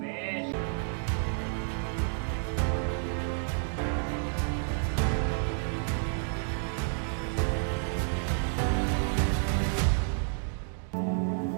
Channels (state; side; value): silent; left; 56 dB below the other